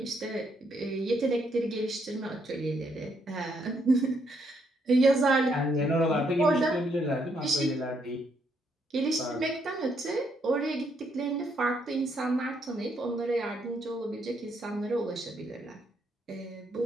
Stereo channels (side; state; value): both; normal; correlation 0.74